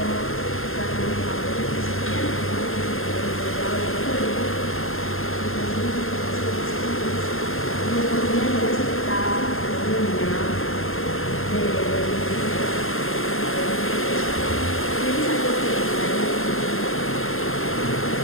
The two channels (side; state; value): right; late; 0.61 ms